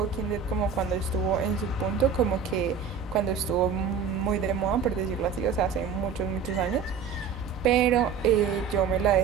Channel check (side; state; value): left; quieter; 6.4 dB